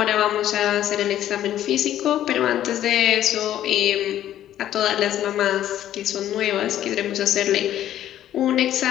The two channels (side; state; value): right; quieter; 11.9 dB